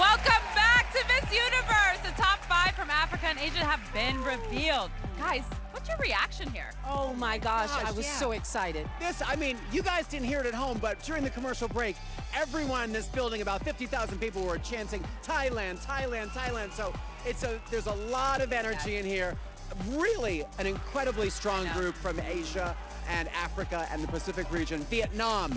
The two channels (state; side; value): identical; both; correlation 1.00